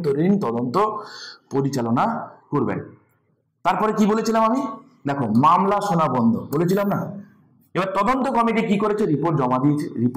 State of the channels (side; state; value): both; identical; correlation 1.00